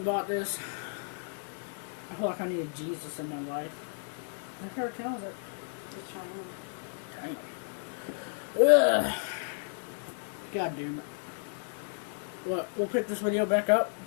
bought this. I feel like I need Jesus in my life. I heard it tells it. It's Chinese. Dang. Ugh. God damn it. What, we'll pick this video back up.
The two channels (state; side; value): silent; right; digital silence